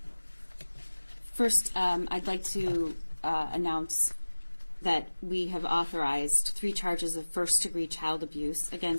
First, I'd like to announce that we have authorized 3 charges of first-degree child abuse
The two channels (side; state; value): both; inverted; correlation -1.00